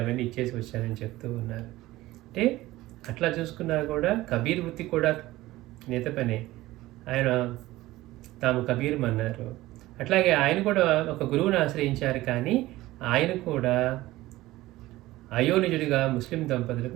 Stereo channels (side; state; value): left; quieter; 17.4 dB